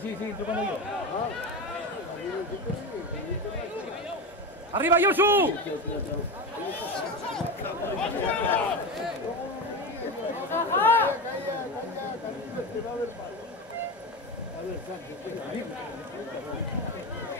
Sí, tú como yo. ¡Arriba, Yosu!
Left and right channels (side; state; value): both; normal; correlation 0.21